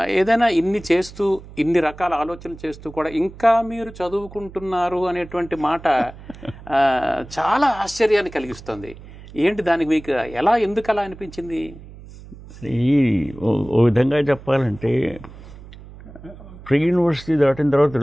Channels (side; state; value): right; noise; hum, 18 dB below the sound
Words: ఏదైనా ఇన్ని చేస్తూ, ఇన్ని రకాల ఆలోచనలు చేస్తూ కూడా ఇంకా మీరు చదువుకుంటున్నారు అనేటువంటి మాట చాలా ఆశ్చర్యాన్ని కలిగిస్తుంది. ఏంటి దానికి మీకు ఎందుకు అలా అనిపించింది? ఓ విధంగా చెప్పాలంటే, ప్రీ యూనివర్సిటీ దాటిన తర్వాత